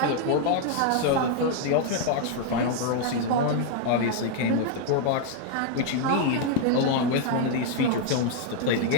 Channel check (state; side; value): different; both; correlation 0.00